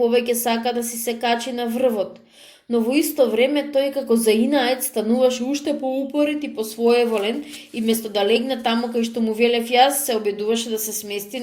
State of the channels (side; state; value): both; identical; correlation 1.00